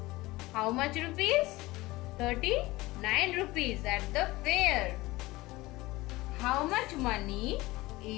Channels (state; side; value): quieter; right; 19.9 dB